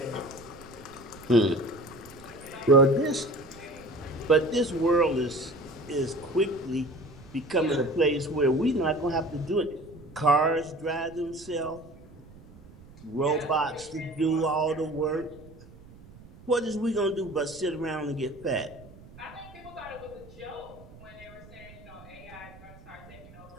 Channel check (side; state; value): right; noise; rumble, 20 dB below the sound